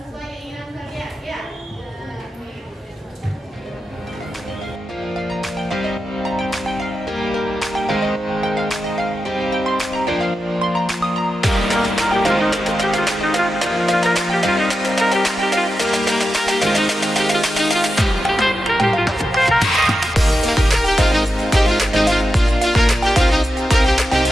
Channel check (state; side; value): normal; both; correlation 0.90